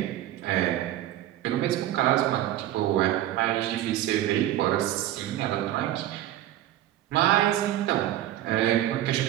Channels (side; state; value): left; quieter; 13.3 dB